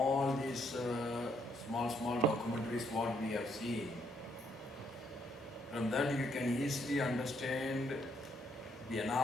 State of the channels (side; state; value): both; normal; correlation 0.72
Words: these small documentaries what we have seen, from that you can easily understand the